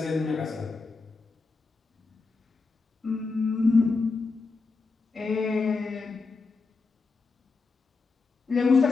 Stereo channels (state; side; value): quieter; right; 4.2 dB